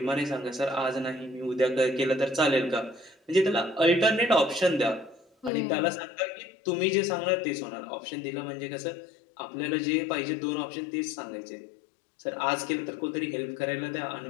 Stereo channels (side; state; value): right; drops out; at 5.5 s